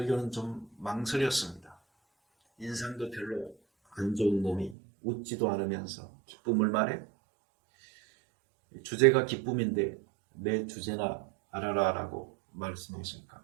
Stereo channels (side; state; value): left; drops out; at 4.8 s